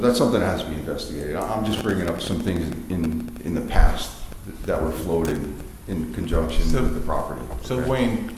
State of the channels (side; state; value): both; identical; correlation 1.00